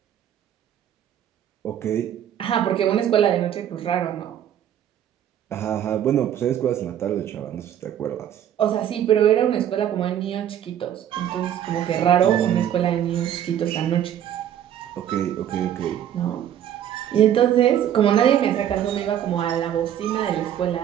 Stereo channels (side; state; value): left; quieter; 10.4 dB